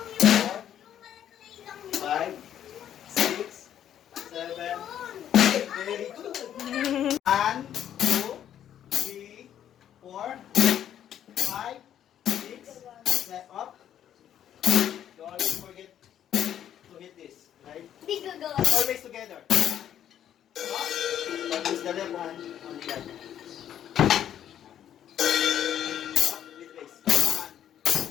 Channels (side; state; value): right; quieter; 10.3 dB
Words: yun. Yung malaki lang yun. 5, 6, 7. Very good. 1, 2, 3, 4, 5, 6, 7. Up. Don't always forget to hit this. Right? Hindi gagawa. Always together. Up. Use the left hand on the other. Up with raise. 1.